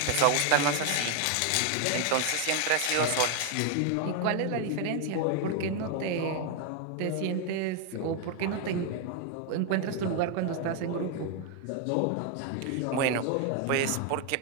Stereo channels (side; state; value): both; different; correlation 0.01